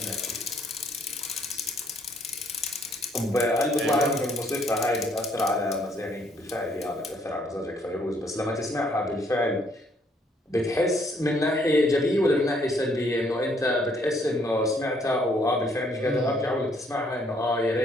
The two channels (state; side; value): normal; both; correlation 0.67